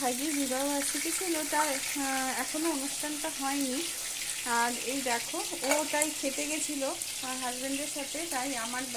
বিবাহ বার্ষিকী ছিল, তার এখনও অনুষ্ঠানটা হয়নি। আর এই দেখো ও তাই খেতে গেছিলো হাজব্যান্ডের সাথে, তাই আমার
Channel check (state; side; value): identical; both; correlation 1.00